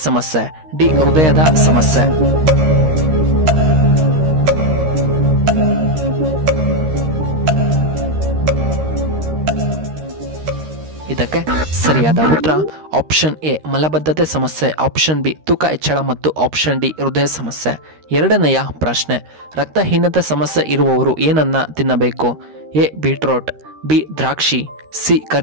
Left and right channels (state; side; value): late; left; 13 ms